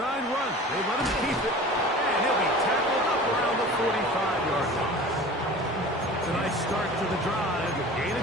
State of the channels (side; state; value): both; normal; correlation 0.40